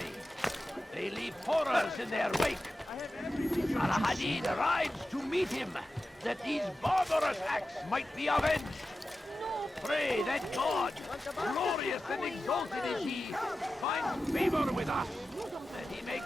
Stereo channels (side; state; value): both; normal; correlation 0.94